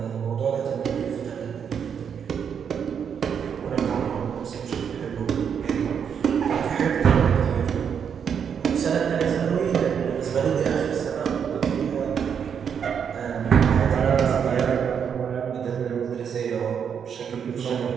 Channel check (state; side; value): quieter; left; 7.5 dB